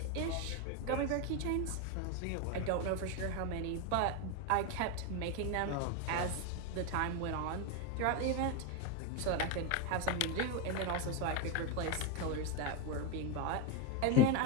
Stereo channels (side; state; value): both; different; correlation 0.02